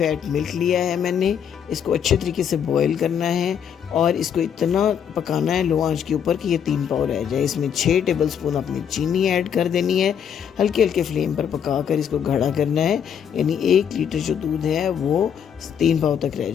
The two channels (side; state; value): right; quieter; 8.2 dB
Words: milk लिया है मैंने। इसको अच्छे तरीके से बॉईल करना है और इसको इतना पकाना है लो आंच के ऊपर कि ये 3 पाव रह जाए। इसमें 6 टेबलस्पून अपनी चीनी ऐड कर देनी है। हल्के हल्के फ्लेम पर पकाकर इसको गाढ़ा करना है, यानी 1 लीटर जो दूध है वो 3 पाव तक रह